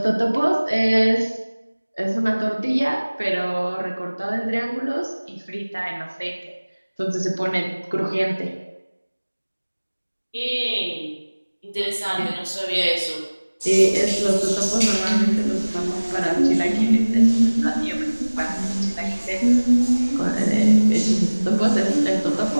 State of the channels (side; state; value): both; inverted; correlation -1.00